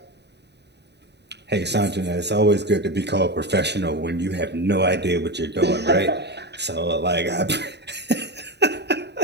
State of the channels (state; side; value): late; left; 0.50 ms